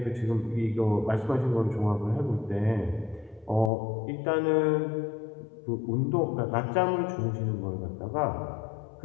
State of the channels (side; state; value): right; drops out; at 3.7 s